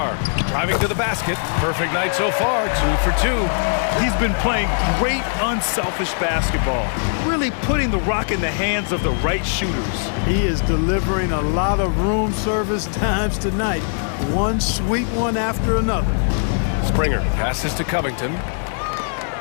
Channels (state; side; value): silent; right; 65 dB below the other